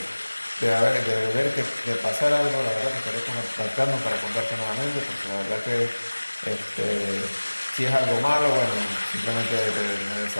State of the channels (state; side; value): inverted; both; correlation -1.00